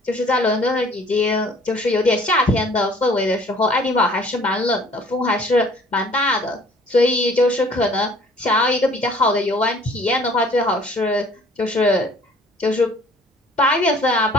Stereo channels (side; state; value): both; normal; correlation 0.54